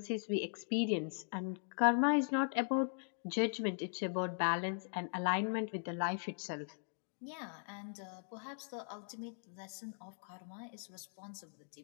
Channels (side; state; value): right; silent; digital silence